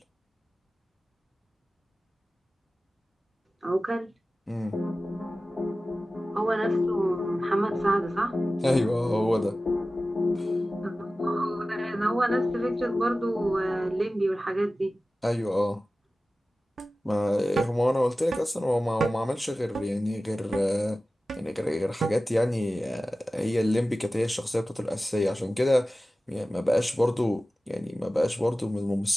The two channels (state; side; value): normal; both; correlation 0.96